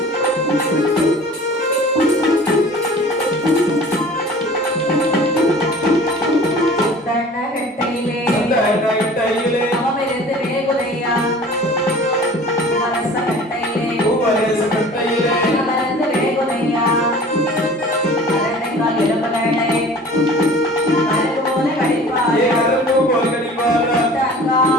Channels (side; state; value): both; normal; correlation 0.44